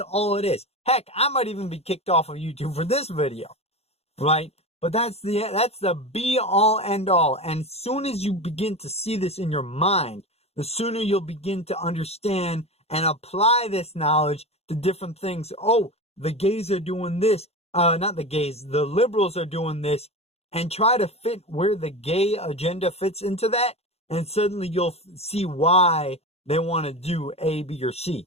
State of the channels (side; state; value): right; late; 0.30 ms